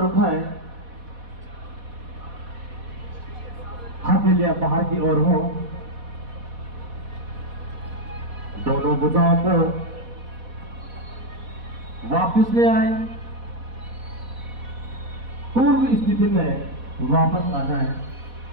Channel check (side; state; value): left; late; 4.1 ms